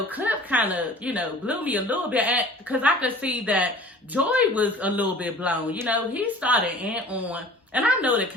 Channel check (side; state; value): both; normal; correlation 0.45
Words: kind of, blew me a little bit, because I could see that Joy was a little bit blown. He started in on, and I know the